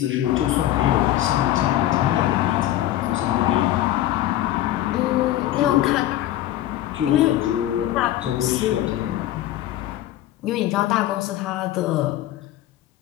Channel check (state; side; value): quieter; right; 13.7 dB